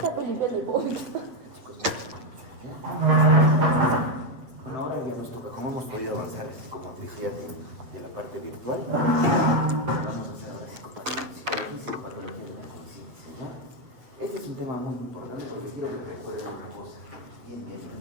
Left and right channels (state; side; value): late; left; 8.1 ms